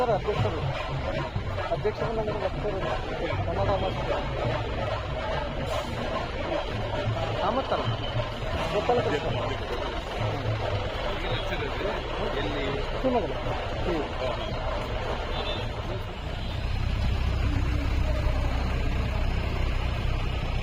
ಅಧ್ಯಕ್ಷರು ಅಧ್ಯಕ್ಷರನ್ನ ಬರ್ತಿರೋದು ಕನ್ನಡ ಕಾಮತ್ತಲ್ಲ ಗೊತ್ತಲ್ಲ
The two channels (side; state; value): both; identical; correlation 1.00